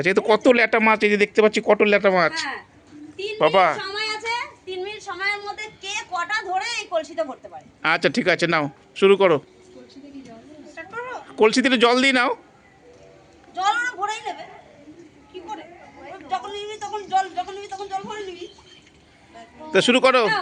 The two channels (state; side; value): identical; both; correlation 1.00